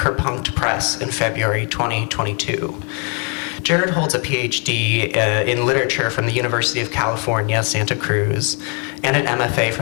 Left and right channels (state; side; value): quieter; right; 36.9 dB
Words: Press in February 2022. Jared holds a PhD in literature from the University of California, Santa Cruz, and an MFA